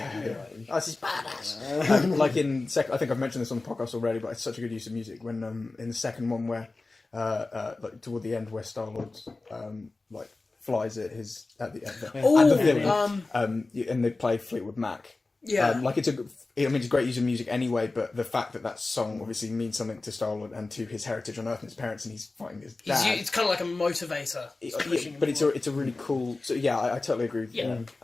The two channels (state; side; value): quieter; right; 3.4 dB